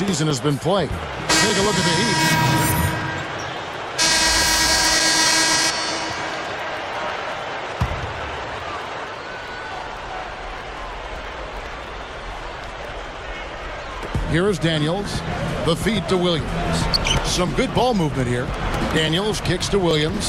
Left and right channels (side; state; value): both; identical; correlation 1.00